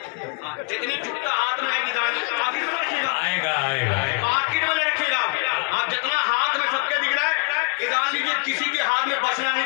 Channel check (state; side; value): quieter; right; 34.8 dB